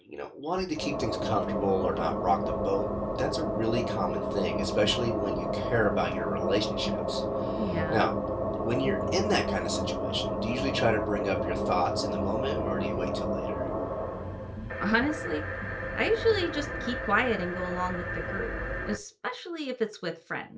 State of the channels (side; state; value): both; identical; correlation 1.00